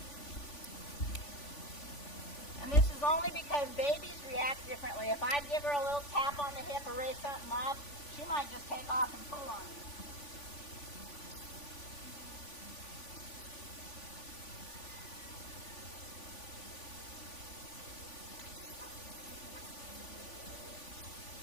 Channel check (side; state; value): right; late; 3.5 ms